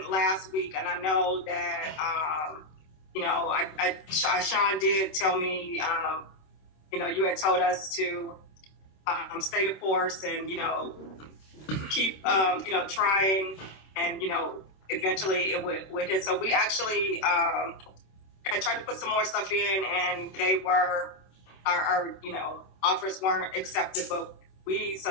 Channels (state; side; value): late; right; 26 ms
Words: last week, and I know that, Sean did tell me, you had told us to stay the course and, keep, trying, and, eventually it would hit. So we actually I tried to put some more stuff in, and they were, our offers weren't accepted, but